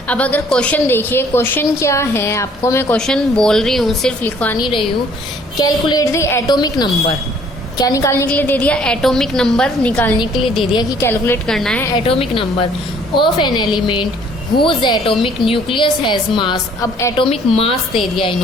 अब अगर क्वेश्चन देखिए, क्वेश्चन क्या है, आपको मैं क्वेश्चन बोल रही हूँ, सिर्फ लिखवा नहीं रही हूँ। कैलकुलेट द एटॉमिक नंबर, क्या निकालने के लिए दे दिया, एटॉमिक नंबर निकालने के लिए दे दिया कि कैलकुलेट करना है atomic number of an element whose atomic nucleus has mass. अब एटॉमिक मास दे दिया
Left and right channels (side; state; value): both; normal; correlation 0.59